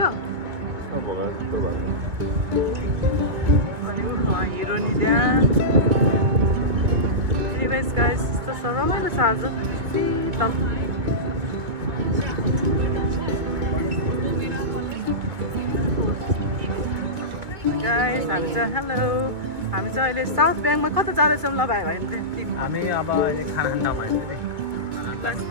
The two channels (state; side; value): late; left; 2.1 ms